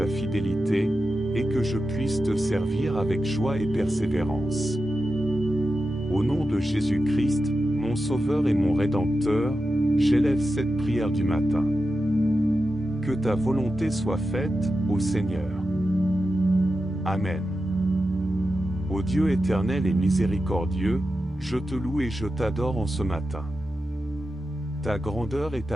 fidélité, et que je puisse te servir avec joie et persévérance. Au nom de Jésus-Christ, mon Sauveur et mon Rédempteur, j'élève cette prière du matin. Que ta volonté soit faite, ô Seigneur. Amen. Ô Dieu éternel et miséricordieux, je te loue et je t'adore en ce matin. Ta grandeur et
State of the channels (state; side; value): normal; both; correlation 0.91